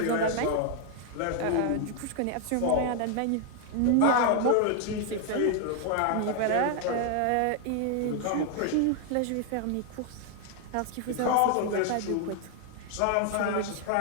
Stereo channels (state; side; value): different; both; correlation 0.00